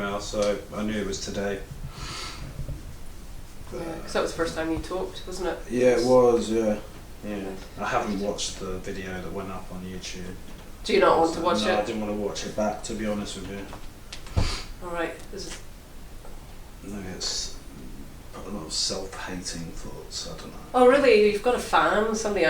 so I knew it was today. Yeah, because that was the first time you talked, wasn't it? Yeah, it was. Yeah. Yeah. I haven't watched the video that went up on YouTube. Do you not want to watch no, I it? didn't want to watch it back, to be honest with you. Alright, this is. No, it's got a lot of self-hating thoughts. I don't know. Oh really? You've got a fan? Somebody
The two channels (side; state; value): both; identical; correlation 1.00